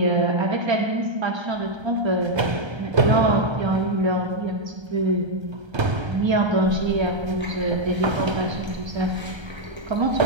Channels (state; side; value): late; left; 1.3 ms